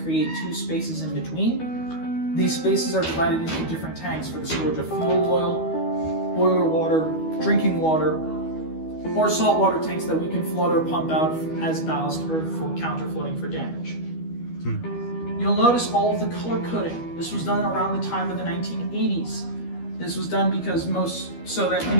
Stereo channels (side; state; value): right; late; 12 ms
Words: create 2 spaces in between. These spaces are divided into different tanks for the storage of fuel oil, boiler water, drinking water, or saltwater tanks that we can flood or pump out as ballast or for counter-flooding for damage. You'll notice all of the color coding. This was done around the time of the 1980s. This was done because so that